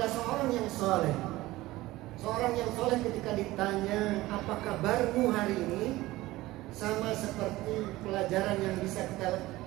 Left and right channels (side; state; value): left; quieter; 18.1 dB